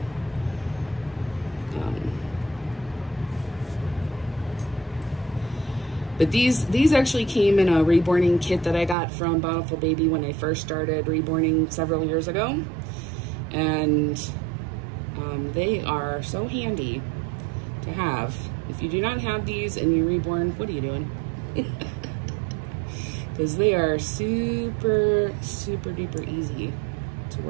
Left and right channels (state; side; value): drops out; left; at 9.0 s